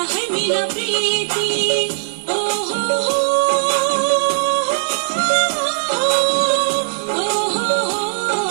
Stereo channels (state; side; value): silent; left; 67 dB below the other